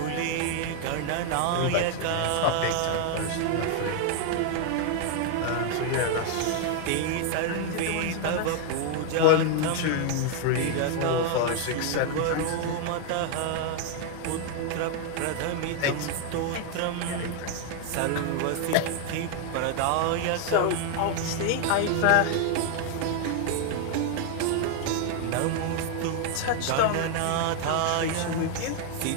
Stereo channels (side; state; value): both; different; correlation 0.00